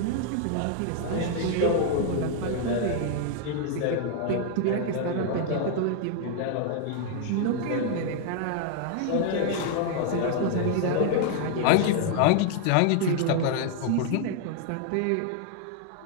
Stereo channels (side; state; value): both; different; correlation 0.00